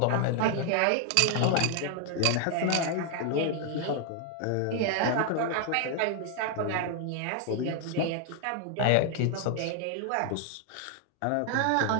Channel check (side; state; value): both; different; correlation 0.00